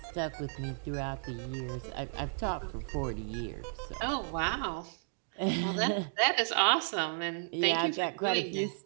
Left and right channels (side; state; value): left; silent; digital silence